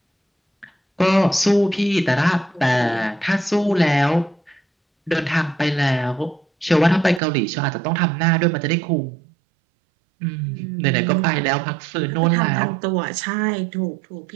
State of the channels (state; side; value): drops out; left; at 7.2 s